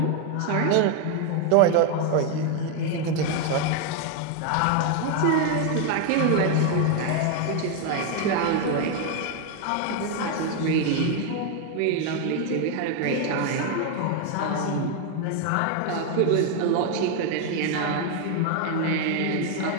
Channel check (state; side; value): different; both; correlation 0.01